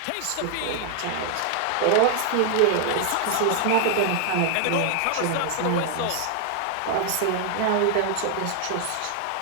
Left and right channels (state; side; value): different; both; correlation 0.00